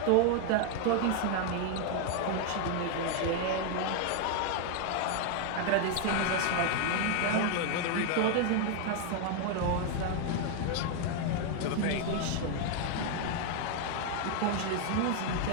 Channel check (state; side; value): different; both; correlation 0.00